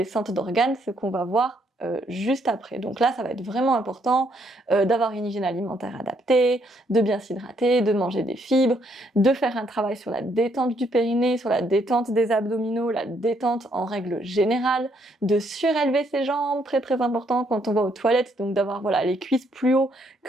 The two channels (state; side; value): normal; both; correlation 0.71